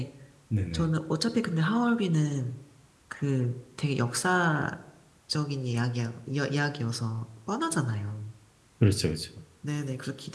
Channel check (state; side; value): identical; both; correlation 1.00